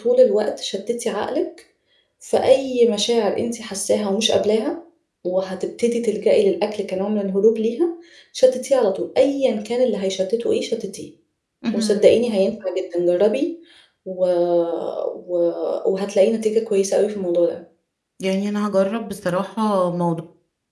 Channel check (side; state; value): both; identical; correlation 1.00